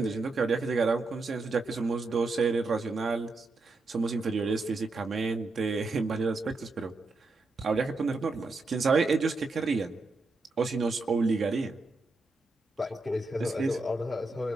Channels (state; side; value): quieter; left; 3.4 dB